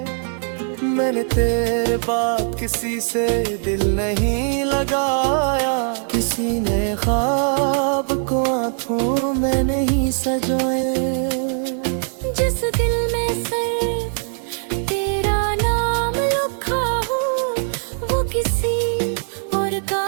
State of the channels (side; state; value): left; silent; digital silence